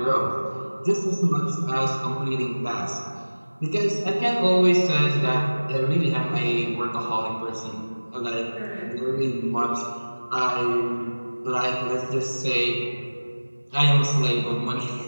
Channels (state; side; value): inverted; both; correlation -1.00